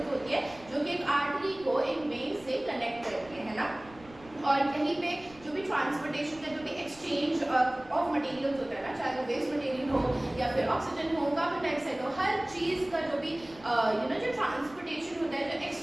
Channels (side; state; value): right; noise; rumble, 22 dB below the sound